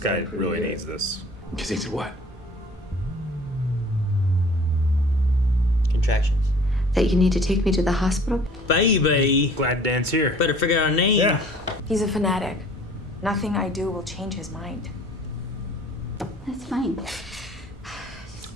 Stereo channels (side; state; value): both; normal; correlation 0.51